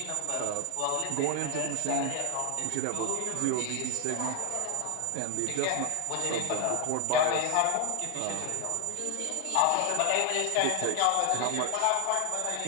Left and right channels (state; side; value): different; both; correlation 0.00